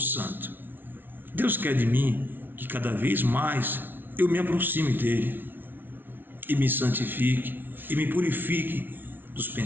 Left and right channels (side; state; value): left; late; 0.096 ms